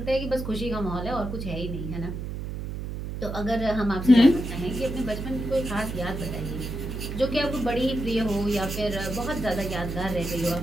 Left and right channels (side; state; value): right; noise; hum, 6 dB below the sound